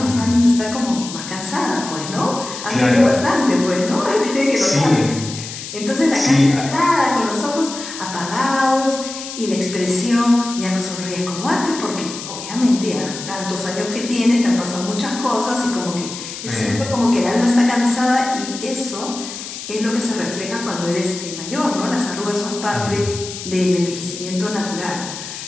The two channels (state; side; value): noise; left; hiss, 10 dB below the sound